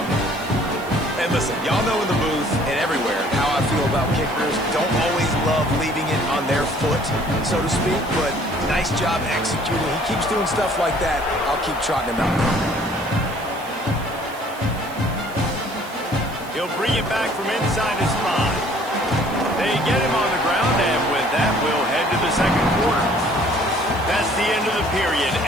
And listen, y'all know in the booth and everywhere how I feel about kickers. Don't always love leaving it on their foot, so to speak, but nice job executing. He keeps doing stuff like that. I'll keep trotting him out. He'll bring it back from inside his 5. They get him on the ground, and with that, we'll head to the second quarter. That's the end of the period,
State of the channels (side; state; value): right; noise; hiss, 19 dB below the sound